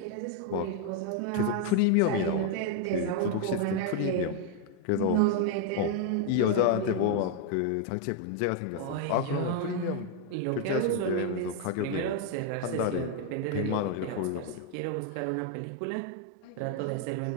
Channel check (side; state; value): both; different; correlation 0.00